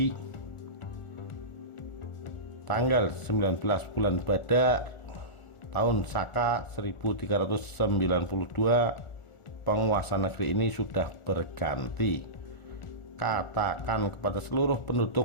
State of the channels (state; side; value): late; right; 1.4 ms